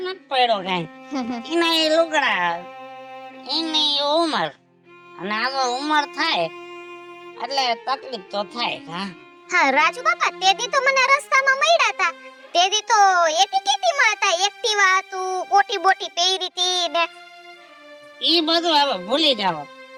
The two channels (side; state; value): both; identical; correlation 1.00